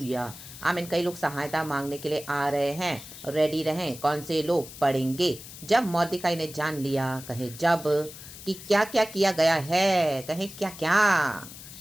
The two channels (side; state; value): left; noise; hiss, 15 dB below the sound